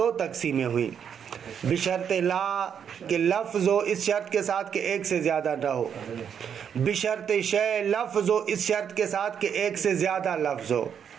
تقسیمیں ہوئیں, بشرط لا کہ لفظ ہو اس شرط کے ساتھ کہ ایک سے زیادہ نہ ہو, بشرط شے لفظ ہو اس شرط کے ساتھ کہ ایک سے زیادہ لفظ ہو.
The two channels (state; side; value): quieter; left; 7.9 dB